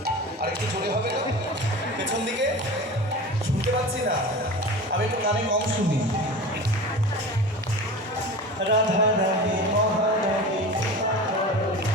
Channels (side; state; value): both; normal; correlation 0.33